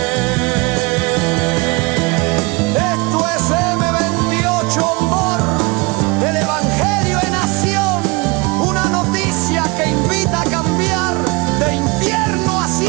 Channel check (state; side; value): quieter; left; 26.6 dB